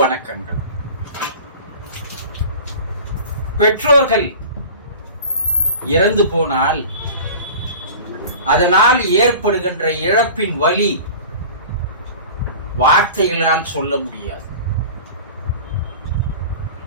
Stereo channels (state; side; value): inverted; both; correlation -0.38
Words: பெற்றோர்கள் இறந்து போனால் அதனால் ஏற்படுகின்ற இழப்பின் வலி வார்த்தைகளால் சொல்ல முடியாது.